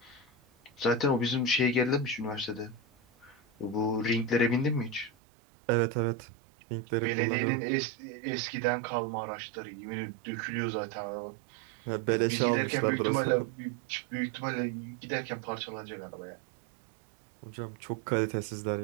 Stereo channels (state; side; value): drops out; left; at 5.1 s